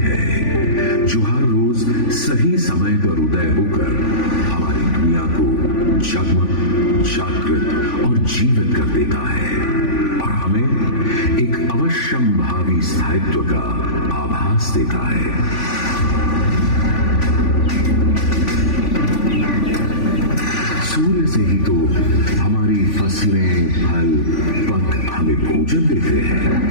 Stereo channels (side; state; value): right; late; 3.5 ms